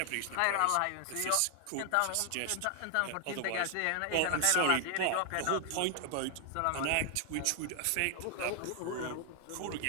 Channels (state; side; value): different; both; correlation 0.00